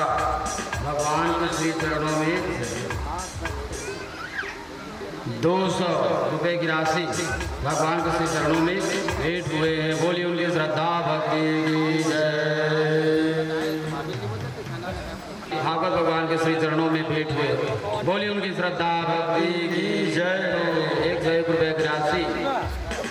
भगवान के श्री चरणों में 200 रुपये की राशि भगवान के श्री चरणों में भेंट हुए हैं। बोली उनकी श्रद्धा भक्ति की जय। भागवत भगवान के श्री चरणों में भेंट हुए। बोली उनकी श्रद्धा भक्ति की जय। 101 रुपये की राशि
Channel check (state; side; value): identical; both; correlation 1.00